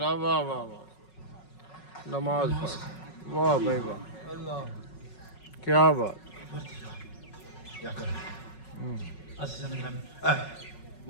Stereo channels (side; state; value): right; late; 5.4 ms